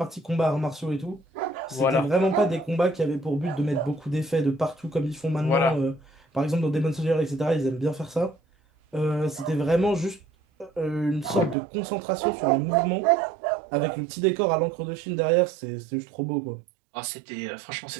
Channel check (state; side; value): drops out; left; at 11.6 s